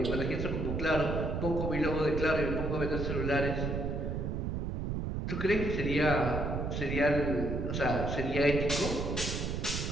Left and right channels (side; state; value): right; noise; rumble, 2 dB below the sound